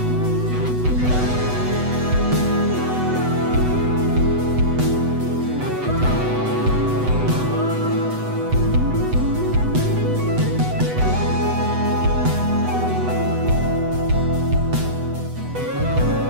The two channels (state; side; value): late; left; 8.0 ms